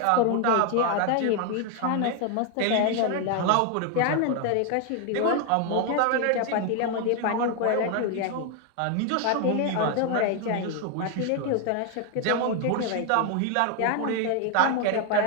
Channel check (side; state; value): both; different; correlation 0.01